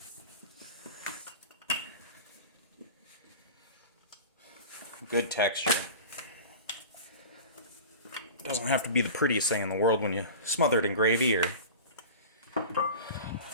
Good texture. It doesn't have to be the prettiest thing in the world when you smother it in gravy or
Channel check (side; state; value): both; inverted; correlation -0.34